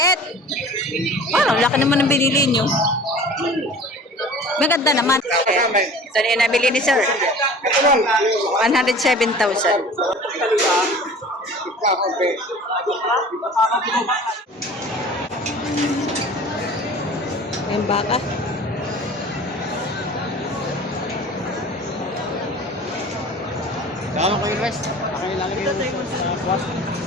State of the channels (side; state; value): both; normal; correlation 0.42